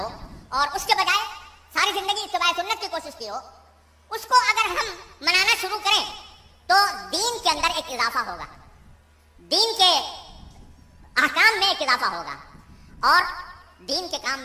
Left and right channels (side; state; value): both; identical; correlation 1.00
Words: اور اس کے بجائے ساری زندگی اتباع سنت کی کوشش کی ہو، اس کو اگر ہم منانا شروع کریں تو دین کے اندر ایک اضافہ ہوگا، دین کے احکام میں ایک اضافہ ہوگا، اور دین کے کام